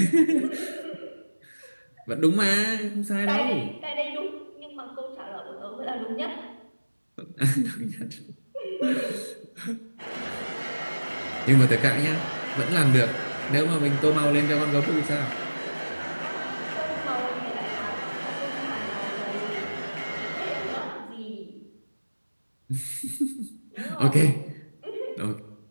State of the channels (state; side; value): inverted; both; correlation -1.00